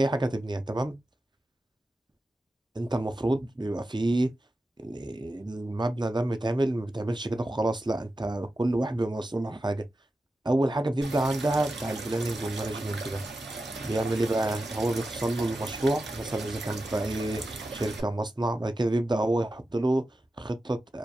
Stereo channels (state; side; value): normal; both; correlation 0.91